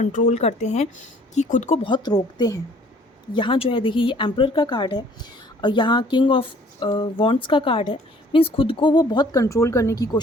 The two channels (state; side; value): normal; both; correlation 0.56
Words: करते हैं, कि खुद को बहुत रोकते हैं। यहाँ जो है, देखिए, ये एम्परर का कार्ड है और यहाँ किंग ऑफ वॉन्ड्स का कार्ड है। मीन्स खुद को वो बहुत कंट्रोल करने की